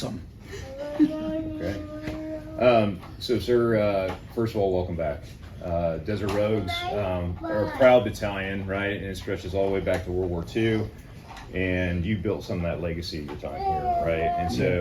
Okay. So, sir, first of all, welcome back. Desert Rogues are a proud battalion, right? And it stretches all the way back to World War II. And you built some of that legacy of your time here, right? And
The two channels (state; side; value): identical; both; correlation 1.00